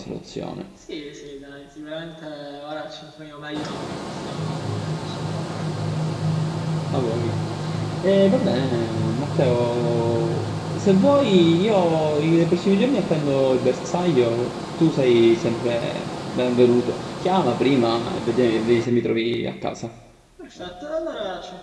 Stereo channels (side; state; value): both; identical; correlation 1.00